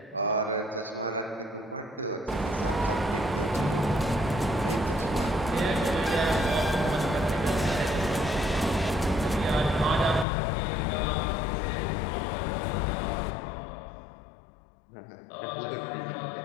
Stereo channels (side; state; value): right; drops out; at 10.2 s